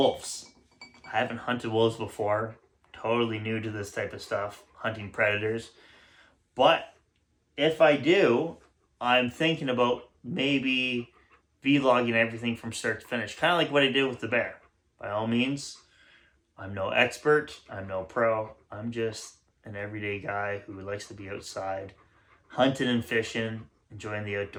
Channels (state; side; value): identical; both; correlation 1.00